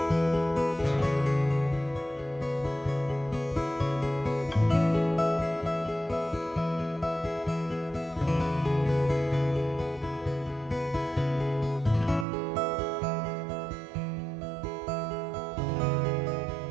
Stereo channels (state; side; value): drops out; left; at 12.2 s